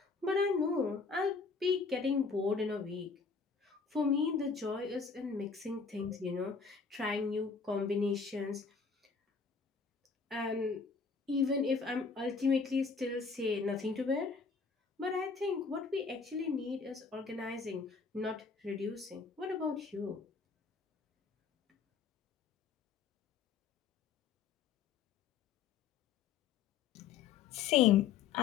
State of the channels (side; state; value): right; quieter; 5.3 dB